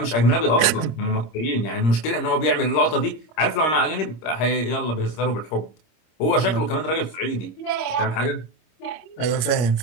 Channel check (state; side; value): late; right; 26 ms